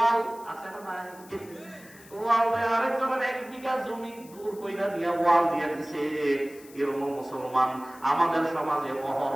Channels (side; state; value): left; noise; hiss, 22 dB below the sound